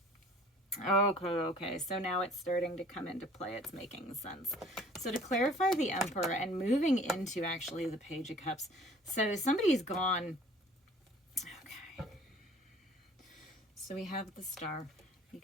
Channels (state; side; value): normal; both; correlation 0.51